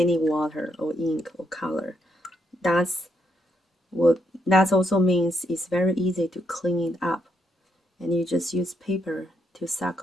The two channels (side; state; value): both; normal; correlation 0.76